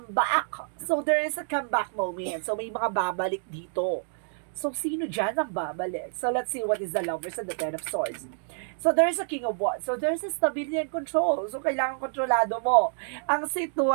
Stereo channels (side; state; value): left; silent; digital silence